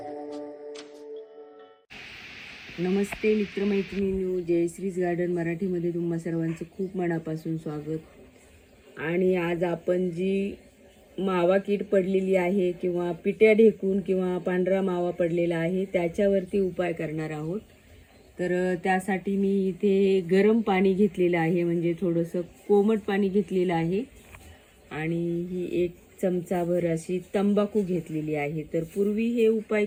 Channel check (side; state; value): both; identical; correlation 1.00